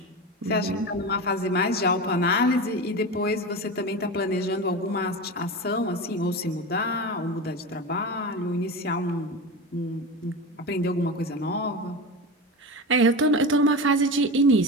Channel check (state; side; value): normal; both; correlation 0.24